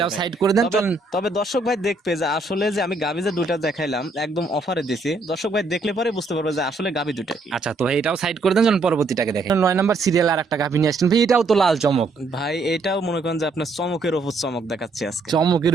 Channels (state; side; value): quieter; left; 3.4 dB